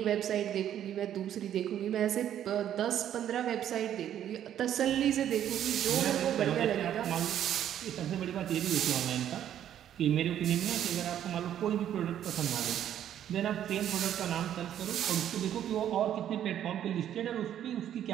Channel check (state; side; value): quieter; left; 10.6 dB